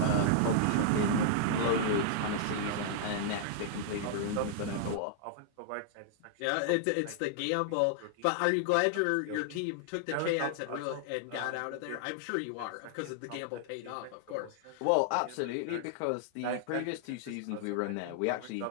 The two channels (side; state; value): both; different; correlation -0.01